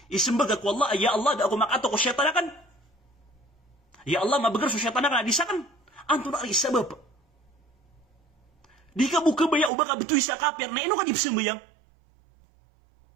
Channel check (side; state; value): left; drops out; at 9.7 s